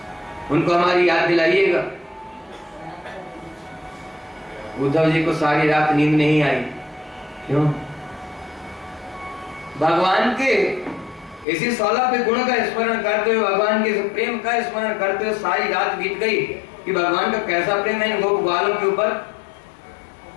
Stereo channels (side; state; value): right; drops out; at 11.5 s